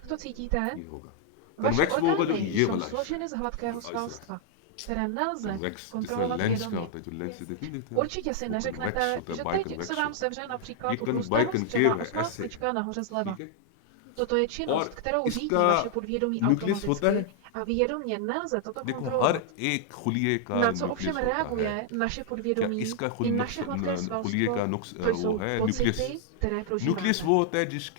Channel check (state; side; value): different; both; correlation 0.00